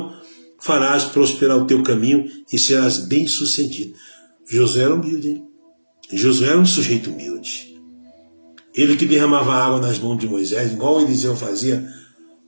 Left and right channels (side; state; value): both; inverted; correlation -1.00